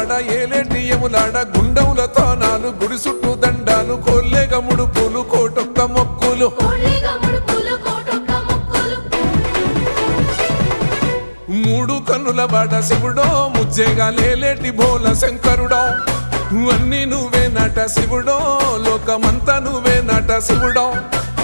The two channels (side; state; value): both; inverted; correlation -1.00